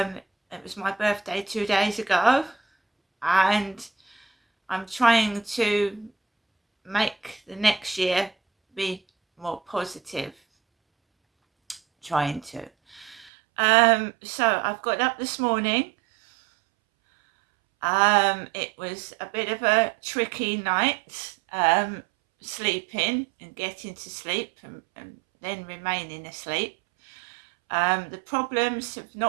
was my birthday 2 days ago, and I'm trying to make the next year be more positive. Trying to. So I've got up this morning. It was a bit of a tricky night, sleeping and getting to sleep and then remaining asleep. The problems have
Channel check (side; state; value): left; drops out; at 13.3 s